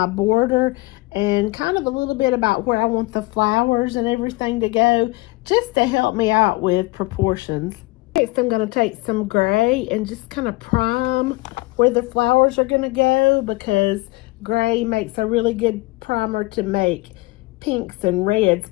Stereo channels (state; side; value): quieter; right; 22.8 dB